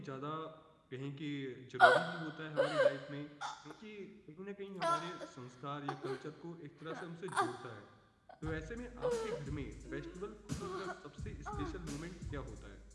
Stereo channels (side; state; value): both; identical; correlation 1.00